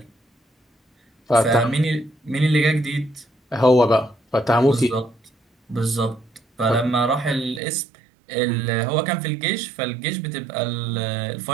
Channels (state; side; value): drops out; left; at 7.6 s